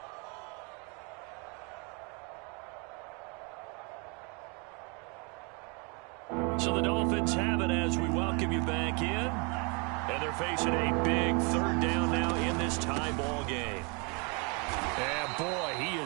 So the Dolphins have it as we welcome you back in. And they're facing a big 3rd down now in this tie ball game. And boy, he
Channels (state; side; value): quieter; left; 32.9 dB